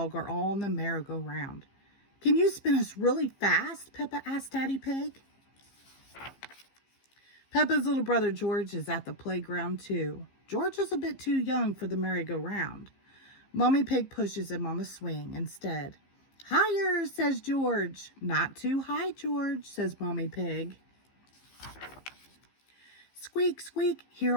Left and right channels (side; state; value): right; late; 15 ms